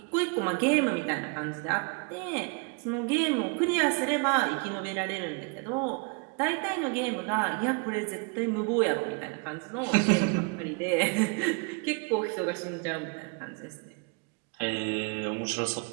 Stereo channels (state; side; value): quieter; left; 34.2 dB